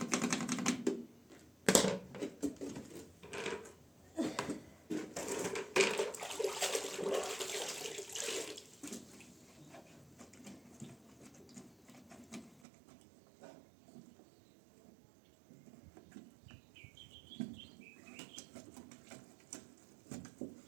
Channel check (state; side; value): drops out; left; at 12.6 s